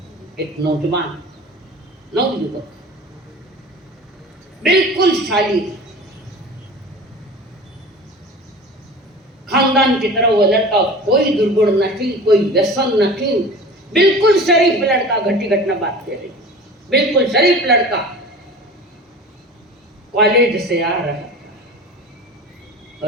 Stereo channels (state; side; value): normal; both; correlation 0.38